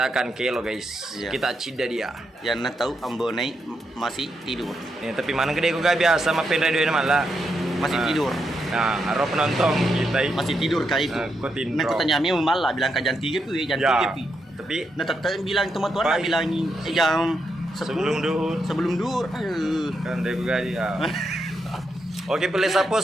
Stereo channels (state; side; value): normal; both; correlation 0.82